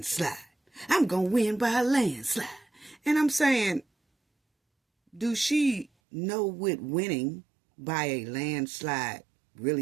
I'm going to win by a landslide. And I'm saying, do she know what winning by a landslide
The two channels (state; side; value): drops out; left; at 5.9 s